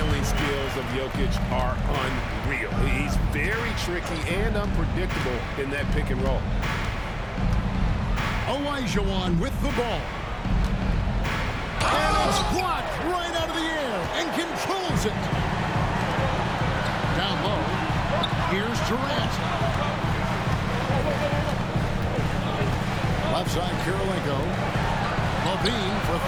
skills of Jokic are unreal. He's very tricky and unpredictable in that pick and roll. Olajuwon with the ball. And it's blocked right out of the air and controls it. Down low. Here's Durant. Left side, Kirilenko. Levine for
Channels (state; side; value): identical; both; correlation 1.00